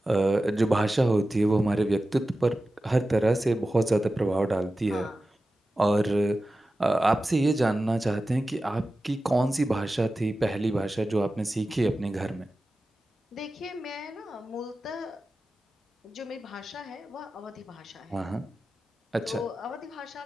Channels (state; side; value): normal; both; correlation 0.94